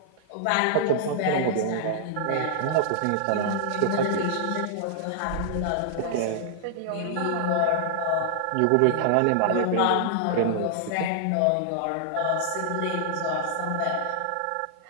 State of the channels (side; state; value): both; different; correlation -0.01